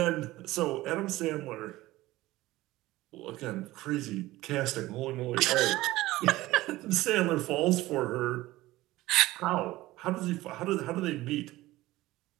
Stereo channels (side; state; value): left; quieter; 17.7 dB